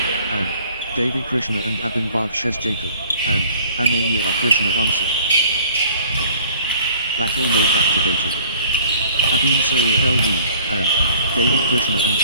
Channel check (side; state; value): both; inverted; correlation -0.53